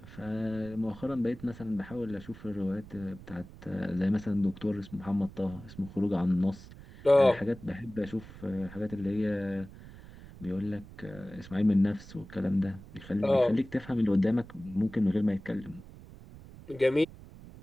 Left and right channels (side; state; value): right; noise; rumble, 17 dB below the sound